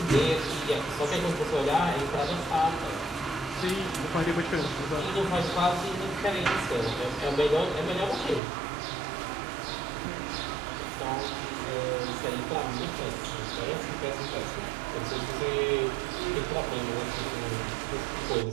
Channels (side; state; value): left; drops out; at 8.4 s